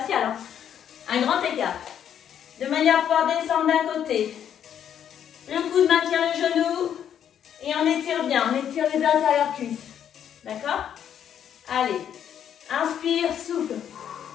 Hein. Un grand écart. De manière à pouvoir descendre d'un côté. Le coude maintient le genou. Et on étire bien. On étire les intérieurs cuisses. D'accord? Allez. Inspire, souffle.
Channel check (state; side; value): quieter; right; 9.3 dB